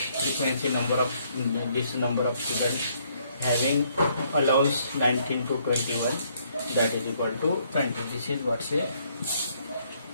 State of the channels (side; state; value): both; inverted; correlation -0.68